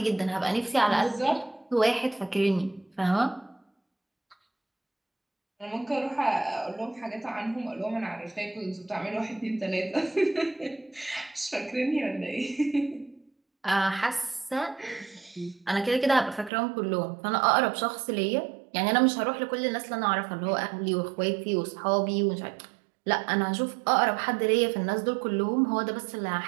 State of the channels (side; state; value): left; drops out; at 16.5 s